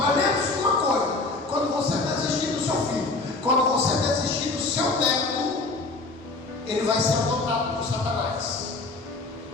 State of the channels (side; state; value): right; quieter; 3.4 dB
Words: lembre-se de uma coisa: quando você desistir do seu filho, quando você desistir do seu neto, ele vai ser adotado por Satanás.